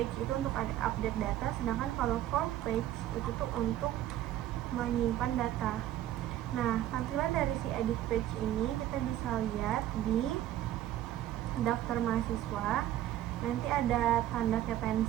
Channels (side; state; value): left; quieter; 12.8 dB